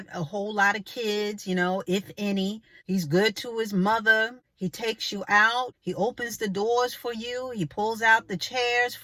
a whole lot of kids, if any. He's good to his mother. He takes you out. He opens the doors for you. He pulls out the chairs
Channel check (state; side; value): identical; both; correlation 1.00